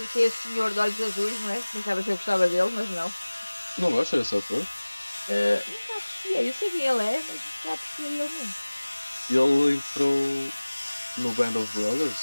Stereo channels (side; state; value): both; inverted; correlation -1.00